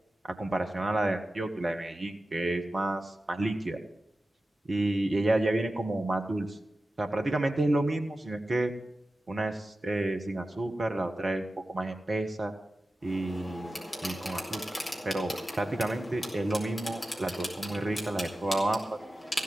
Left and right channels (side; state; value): both; normal; correlation 0.94